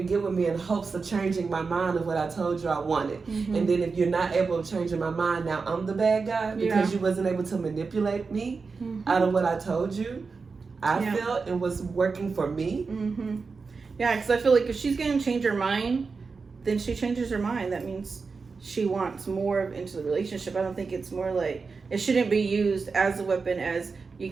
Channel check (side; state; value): left; quieter; 4.7 dB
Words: get with me in hopes of changing my mind of what I told you I wanted. And then if you're not able to change my mind, now I'm the bad guy because you wasn't able to manipulate me out of what I told you. I felt and was working for me. Yeah, because I feel like if she's going to change her mind, then she changes her mind. That means she wants more into the relationship. I don't think it's more like, it shouldn't be used as a weapon as you